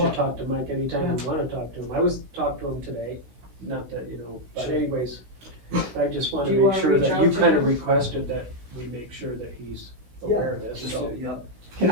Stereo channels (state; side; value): late; left; 16 ms